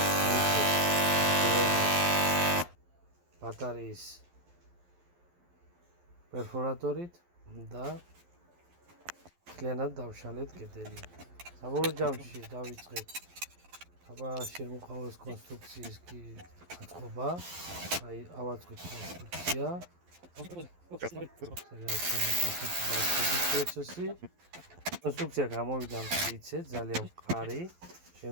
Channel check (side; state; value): left; late; 11 ms